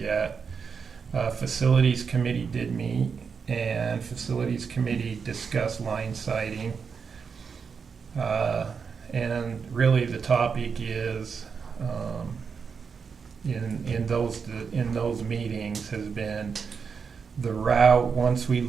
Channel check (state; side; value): quieter; left; 5.9 dB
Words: Facilities committee did meet, and facilities committee discussed line siting. And really the topic is, in those meetings has been the route once we